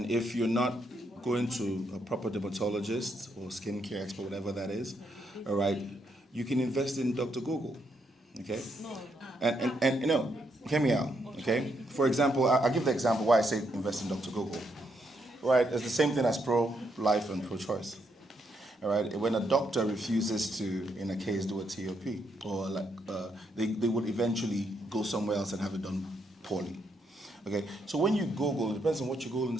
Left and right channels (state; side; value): normal; both; correlation 0.77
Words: if you're not going to a proper dermatologist or skincare expert, whatever that is, all right, you can invest in Dr. Google, okay? And hear me out, okay? For example, I'll give the example why I say invest in Dr. Google, right? It's the same thing as pro-life and pro-choice. All right. When a doctor refuses to, in a case, do a TOP, or they would eventually go somewhere else and have it done poorly. Okay. So when you Google, it depends on what you Google in the